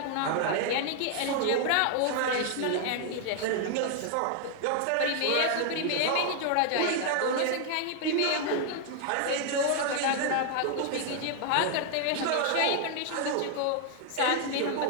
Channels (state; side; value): different; both; correlation 0.00